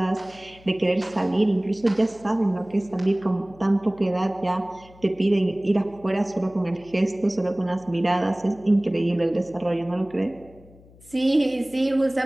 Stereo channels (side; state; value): left; noise; hum, 25 dB below the sound